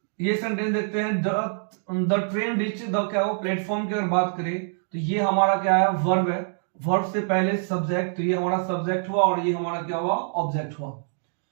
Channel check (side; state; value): left; silent; digital silence